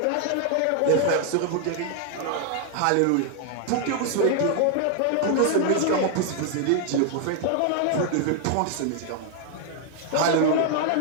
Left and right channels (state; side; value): different; both; correlation 0.00